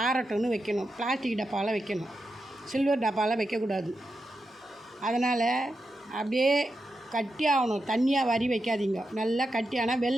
ஆறட்டும்னு வைக்கணும். பிளாஸ்டிக் டப்பாவில் வைக்கணும். சில்வர் டப்பாவில் வைக்கக்கூடாது. அதனால் அப்படியே கட்டியாகணும். தண்ணியாக வாரி வைக்காதீங்க. நல்லா கட்டியானால்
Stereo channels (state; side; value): normal; both; correlation 0.88